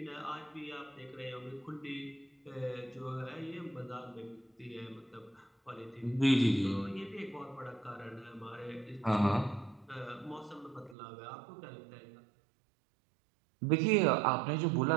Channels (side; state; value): left; drops out; at 11.0 s